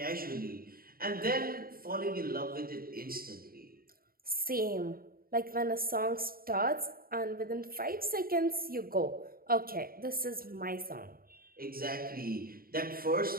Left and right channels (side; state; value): left; late; 0.43 ms